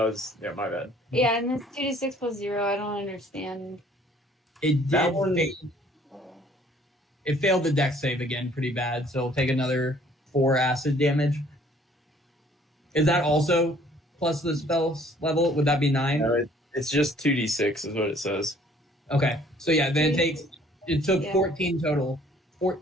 was my bad. Yeah, and this 2d6 plus 0, I don't understand. It That did one- fail. It failed the dex save again pretty bad, so it'll take another 4 acid damage. Is that also plus the spell's level? Would that be 9? No, it's just 2d6 is what it says. Okay. So yeah, then it took Yeah. 14 total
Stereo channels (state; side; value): normal; both; correlation 0.58